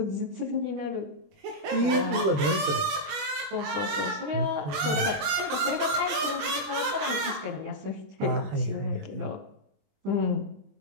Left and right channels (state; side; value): late; left; 20 ms